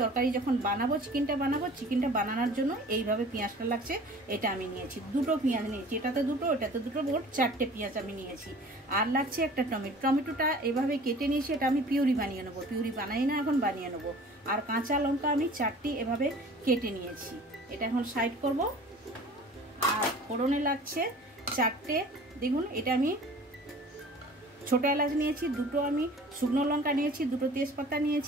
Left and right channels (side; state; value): both; normal; correlation 0.46